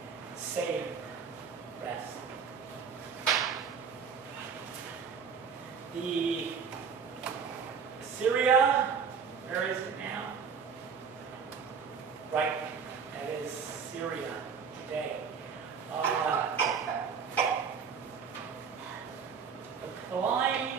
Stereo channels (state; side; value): quieter; left; 6.3 dB